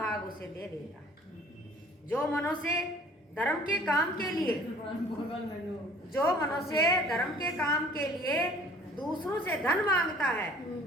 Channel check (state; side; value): normal; both; correlation 0.52